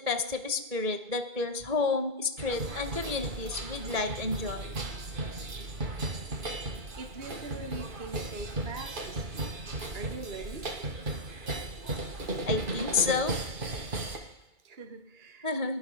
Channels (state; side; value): late; left; 2.3 ms